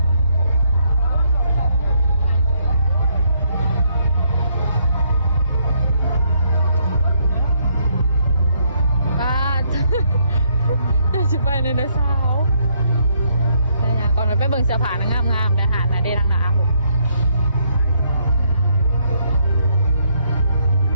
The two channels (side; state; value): both; inverted; correlation -0.71